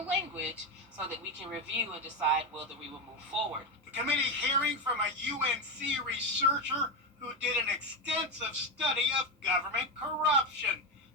so that we can review and decide whether we will move forward. The committee hearing from a UNC researcher who did an extensive study of government corruption.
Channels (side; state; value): both; normal; correlation 0.12